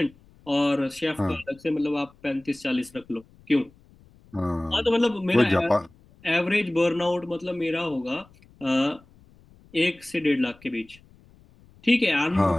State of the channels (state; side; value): noise; left; rumble, 27 dB below the sound